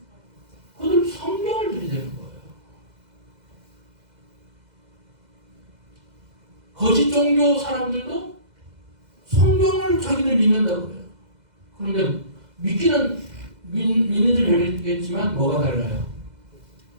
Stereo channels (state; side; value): late; left; 2.0 ms